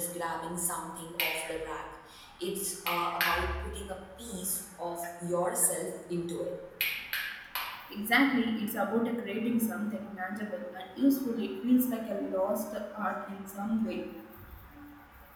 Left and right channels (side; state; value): both; identical; correlation 1.00